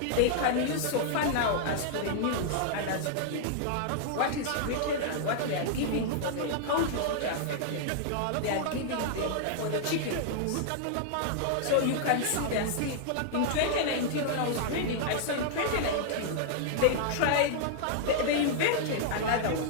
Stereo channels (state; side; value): different; both; correlation -0.01